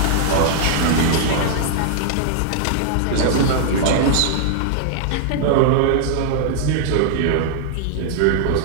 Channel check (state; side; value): different; both; correlation -0.01